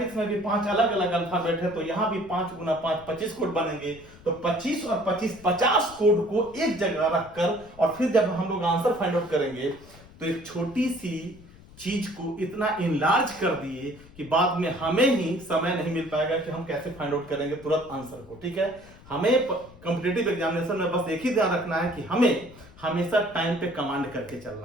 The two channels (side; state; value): left; noise; rumble, 22 dB below the sound